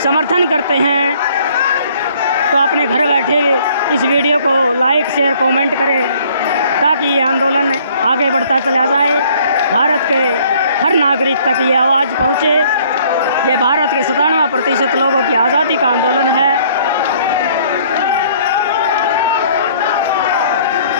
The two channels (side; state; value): both; inverted; correlation -0.59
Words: समर्थन करते हैं तो अपने घर बैठे इस वीडियो को लाइक, शेयर, कमेंट करें ताकि ये आंदोलन आगे बढ़ता चला जाए। भारत के हर नागरिक तक ये आवाज़ पहुँचे। ये भारत के 97% लोगों की आज़ादी का आंदोलन है।